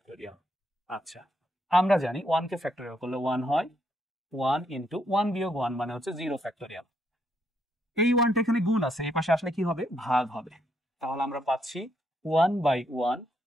আচ্ছা, আমরা জানি 1 কে ফ্যাক্টোরিয়াল করলে 1 হয়, 1 ইন্টু 1 বিয়োগ 1 মানে হচ্ছে 0 ফ্যাক্টোরিয়াল। এই 1টা এখানে গুণ আছে, এই পাশে আসলে কি হবে, ভাগ হবে। তাহলে আমরা পাচ্ছি 1 বাই 1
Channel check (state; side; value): normal; both; correlation 0.75